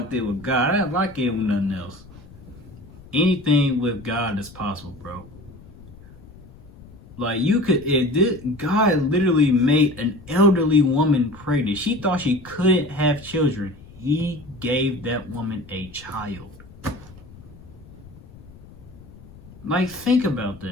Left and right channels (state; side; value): noise; left; rumble, 20 dB below the sound